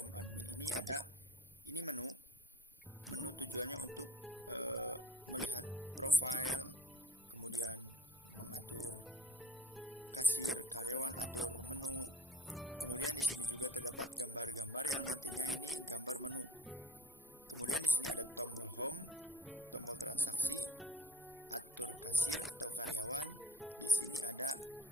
admin ini ada menu tujuannya untuk melihat profil, kemudian mengatur kasir, karyawan, atur menu. Kemudian di sini juga terdapat gambar-gambar yang nantinya ini gambar menu. Kemudian di sini ada tombol home, tombol transaksi, atur kasir atau karyawan. Di sini ada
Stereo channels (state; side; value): normal; both; correlation 0.46